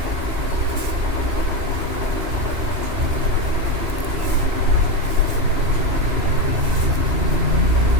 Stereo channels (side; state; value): left; late; 2.8 ms